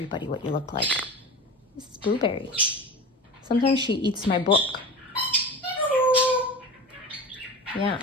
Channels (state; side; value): normal; both; correlation 0.31